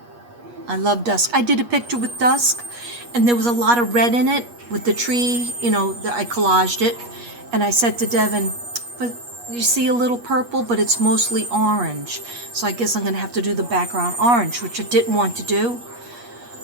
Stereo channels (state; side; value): late; left; 8.4 ms